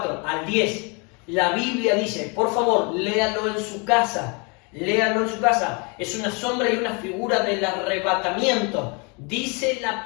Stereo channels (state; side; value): quieter; right; 32.3 dB